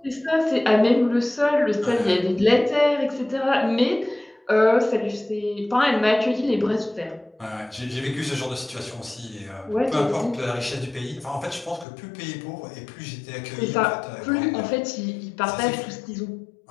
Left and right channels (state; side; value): drops out; right; at 11.9 s